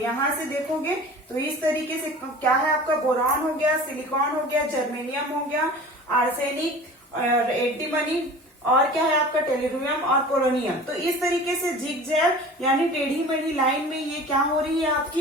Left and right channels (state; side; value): normal; both; correlation 0.40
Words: से देखोगे तो इस तरीके से क्या है? आपका बोरॉन हो गया, सिलिकॉन हो गया, जर्मेनियम हो गया, आर्सेनिक, एंटीमनी और क्या है? आपका टेलुरियम और पोलोनियम। तो इस तरीके से जिगजैग यानी टेढ़ी मेढ़ी लाइन में ये क्या हो रही है?